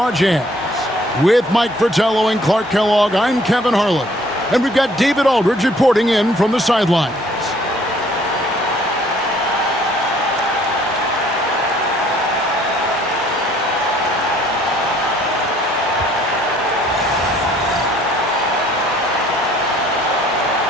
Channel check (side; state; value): both; normal; correlation 0.60